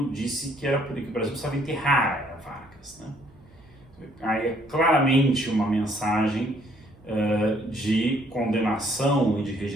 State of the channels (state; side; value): noise; right; hum, 27 dB below the sound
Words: disse que era por isso que o Brasil precisava enterrar a era Vargas, né? Aí é claramente uma mensagem de condenação e de